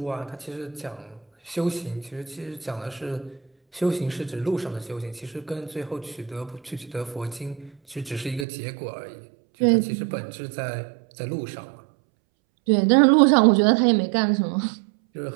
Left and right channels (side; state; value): left; drops out; at 8.5 s